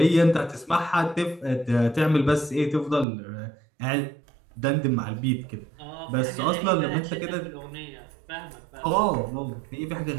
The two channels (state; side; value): drops out; left; at 3.1 s